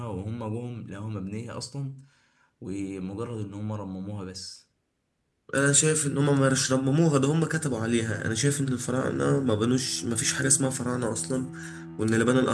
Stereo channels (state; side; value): identical; both; correlation 1.00